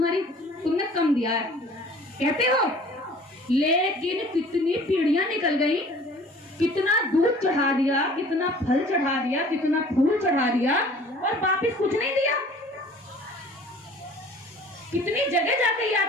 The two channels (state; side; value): normal; both; correlation 0.49